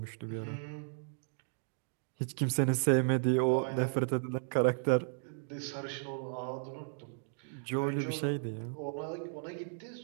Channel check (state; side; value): silent; left; digital silence